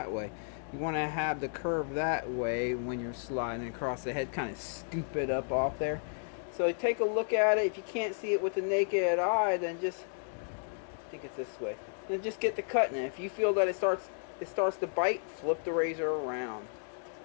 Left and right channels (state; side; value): silent; right; digital silence